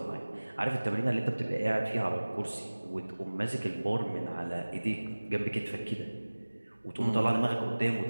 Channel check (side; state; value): both; inverted; correlation -1.00